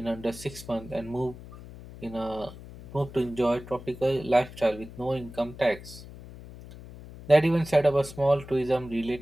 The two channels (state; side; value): noise; left; hum, 16 dB below the sound